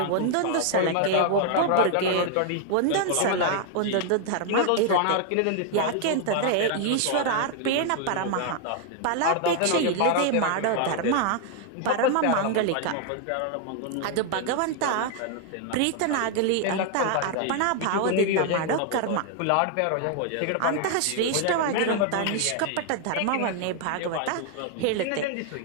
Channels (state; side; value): different; both; correlation 0.00